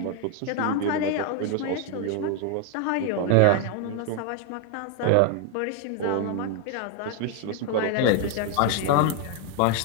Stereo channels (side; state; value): both; different; correlation 0.01